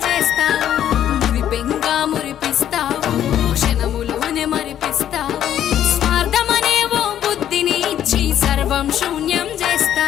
చేస్తావు మురిపెంగా మురిపిస్తావు క్షణములోనే మరిపిస్తావు స్వార్థమనే ఓ బుద్ధిని ఇచ్చి సర్వం శూన్యం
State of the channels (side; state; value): right; quieter; 10.7 dB